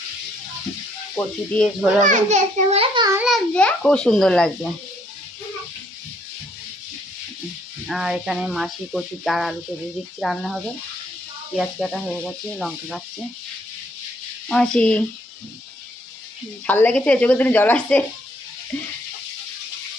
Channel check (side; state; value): both; normal; correlation 0.68